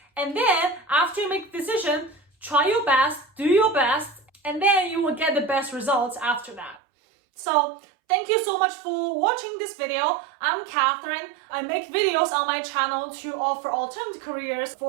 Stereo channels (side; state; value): left; drops out; at 6.8 s